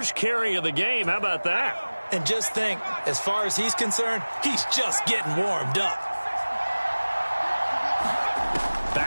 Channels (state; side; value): inverted; both; correlation -1.00